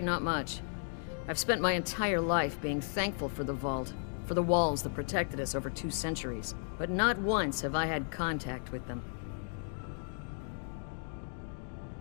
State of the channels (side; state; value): right; silent; digital silence